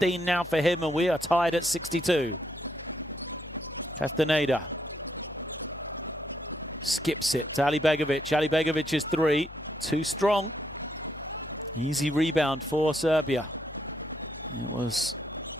now for him, and we are tied at 62. Castaneda skips it to Alibegovic. Alibegovic is 3. Too strong. Easy rebound for Serbia. It was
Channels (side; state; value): left; noise; hum, 18 dB below the sound